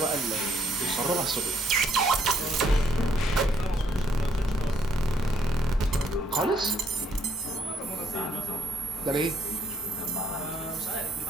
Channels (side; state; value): both; normal; correlation 0.69